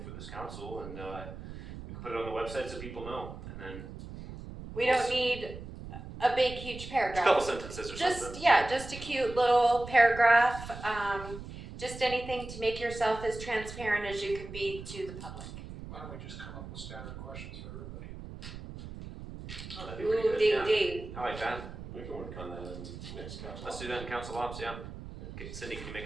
for this council and, we can put it on the website so people know and then We don't need a big, huge just a paragraph. couple sentences or something. Just a cute little paragraph, just anything to make yourself as transparent as you can be to the public. Why don't we just come up with standard questions for everybody? Oh, that'd be pretty Ooh, good, ding, yeah. ding. I like that. We can work on that in next council. Let's do that in council ops, yeah. Okay, Cindy, can you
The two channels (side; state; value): right; noise; rumble, 11 dB below the sound